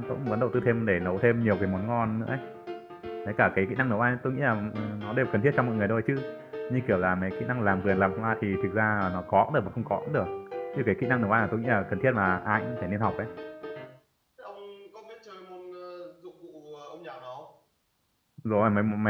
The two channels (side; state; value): both; identical; correlation 1.00